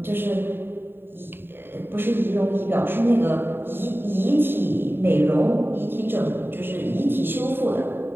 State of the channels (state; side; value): late; left; 0.10 ms